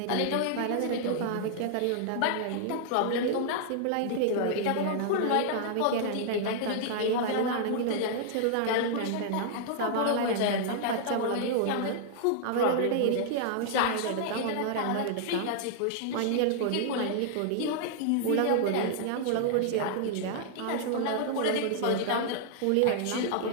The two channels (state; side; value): different; both; correlation -0.01